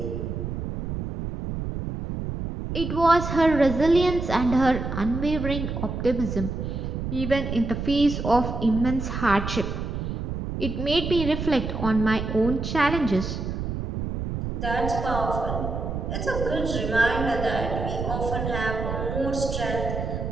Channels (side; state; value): right; noise; rumble, 4 dB below the sound